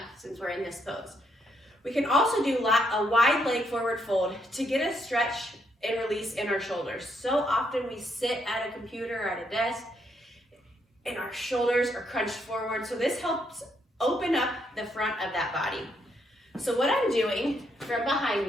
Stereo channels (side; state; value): both; normal; correlation 0.75